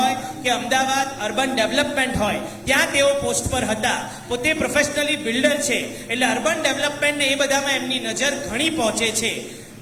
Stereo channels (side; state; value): both; identical; correlation 1.00